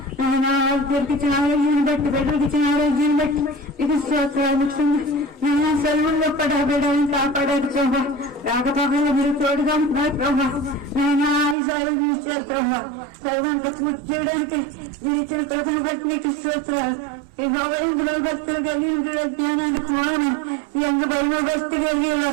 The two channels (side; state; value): left; drops out; at 11.6 s